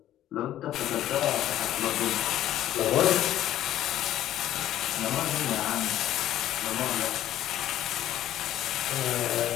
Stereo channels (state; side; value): quieter; right; 12.6 dB